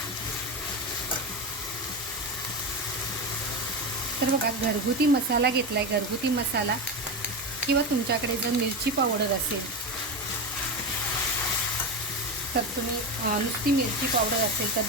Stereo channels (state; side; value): normal; both; correlation 0.18